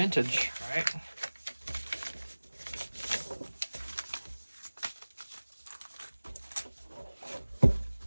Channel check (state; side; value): inverted; both; correlation -1.00